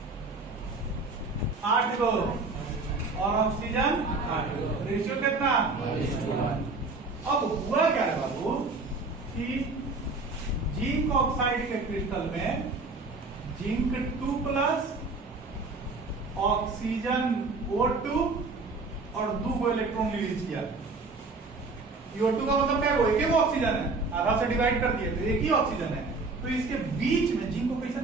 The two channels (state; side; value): quieter; left; 3.7 dB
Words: आठ गो और ऑक्सीजन 8 गो। रेशियो कितना? अब हुआ क्या है बाबू कि जिंक ऑक्साइड के क्रिस्टल में जिंक 2+ ऑक्सीजन O2 और 2 इलेक्ट्रॉन रिलीज किया। O2 का मतलब क्या है? एक ही ऑक्सीजन है, आधा से डिवाइड कर दिए तो एक ही ऑक्सीजन है। तो इसके बीच में जिंक को कैसे